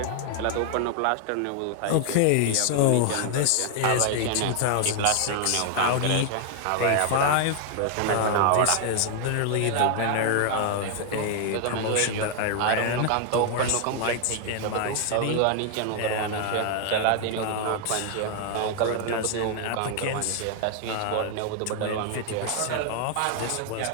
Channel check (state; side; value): different; both; correlation 0.00